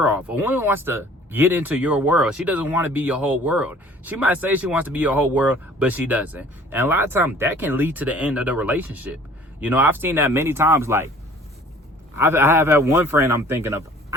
off. A woman wants to get into your world. She doesn't want to be your whole world. She might say she wants to be your whole world, but she doesn't. And a lot of times that can lead to the end of the relationship. You know, I've seen that many times. Like, I have had one friend I'm thinking of.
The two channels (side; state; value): both; normal; correlation 0.51